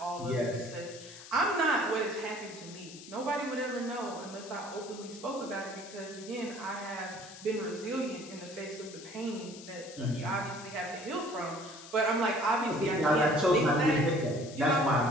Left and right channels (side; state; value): left; noise; hiss, 16 dB below the sound